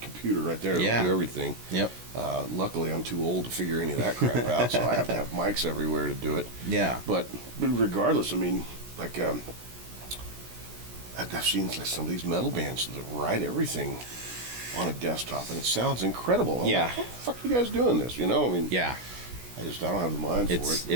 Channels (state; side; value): late; left; 16 ms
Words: computer right there to do everything. Yep. Luckily, I'm too old to figure any of that crap out, so I have to have mics everywhere to do it. Yeah. But regardless, I mean, like I've seen like some of these metal bands that write everything on a desktop, and it sounds incredible. I'm like, how the fuck are you guys doing this? I mean, I don't have the mind for it.